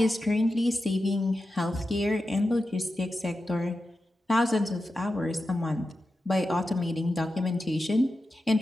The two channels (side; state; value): both; normal; correlation 0.91